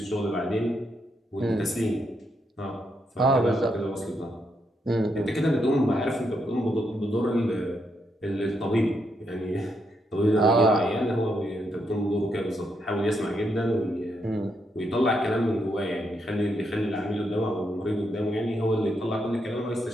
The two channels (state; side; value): normal; both; correlation 0.79